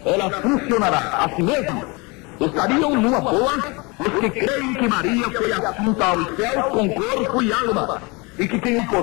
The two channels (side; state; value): right; quieter; 27.5 dB